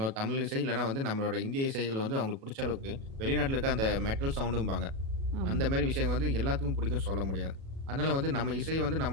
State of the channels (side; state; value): left; late; 37 ms